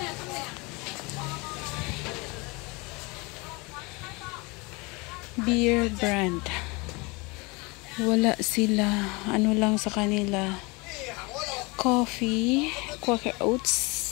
Beer brand. Wala sila. Ano lang sa kanila. Coffee. Quaker Oats.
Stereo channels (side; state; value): right; quieter; 26.9 dB